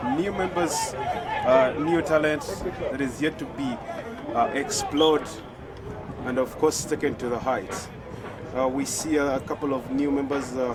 new members, new talent that is yet to be explored and of course taken to the heights. We see a couple of new members,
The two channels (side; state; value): both; identical; correlation 1.00